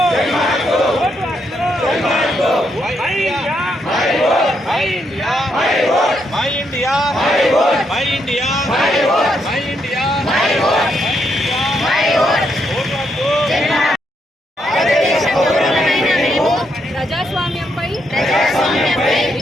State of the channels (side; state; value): both; normal; correlation 0.78